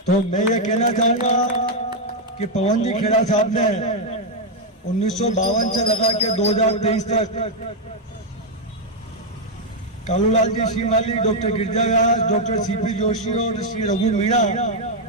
तो मैं ये कहना चाहूंगा कि पवन जी खेड़ा साहब ने 1952 से लगा के 2023 तक कालूलाल जी श्रीमाली, डॉक्टर गिरजा व्यास, डॉक्टर सीपी जोशी और श्री रघु मीणा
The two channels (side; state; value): both; normal; correlation 0.00